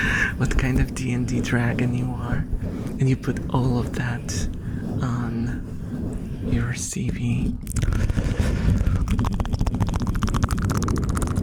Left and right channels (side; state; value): both; identical; correlation 1.00